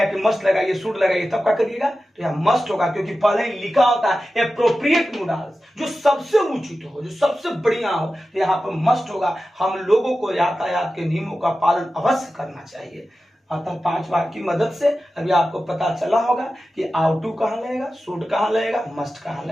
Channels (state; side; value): normal; both; correlation 0.93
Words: कि मस्ट लगाइए शुड लगाइए, तब क्या करिएगा, तो यहां मस्ट होगा, क्योंकि पहले ही लिखा होता है एप्रोप्रिएट मोडाल्स, जो सबसे उचित हो, जो सबसे बढ़िया हो, तो यहाँ पर मस्ट होगा। हम लोगों को यातायात के नियमों का पालन अवश्य करना चाहिए। अतः 5 वाक्य की मदद से अभी आपको पता चला होगा कि आउट टू कहां लगेगा, शुड कहां लगेगा, मस्ट कहां